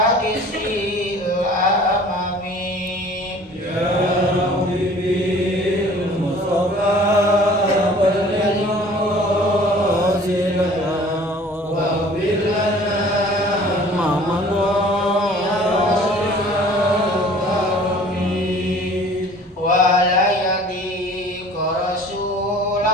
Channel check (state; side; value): normal; both; correlation 0.49